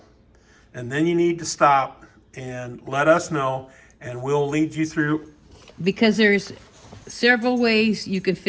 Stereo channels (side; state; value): both; identical; correlation 1.00